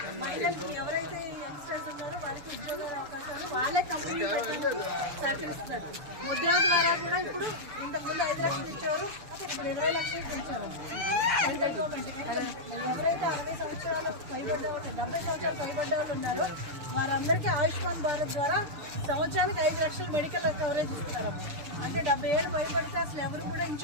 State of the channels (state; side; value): late; left; 6.8 ms